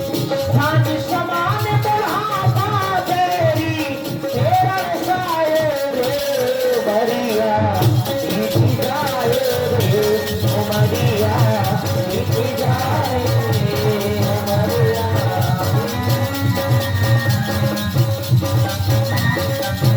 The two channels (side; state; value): both; identical; correlation 1.00